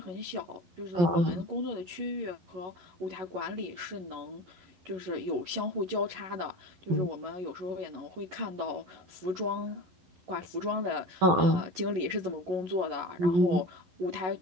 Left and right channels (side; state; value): left; late; 11 ms